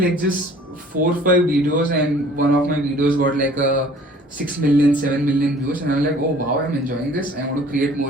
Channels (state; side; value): normal; both; correlation 0.52